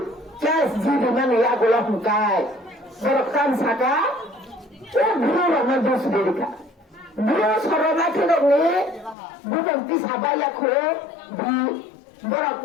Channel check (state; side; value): drops out; right; at 9.2 s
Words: kes jadi mana ya golak mukai berkan saka guru ramai dos berika guru sorona kena ni bukan tisabaya kore di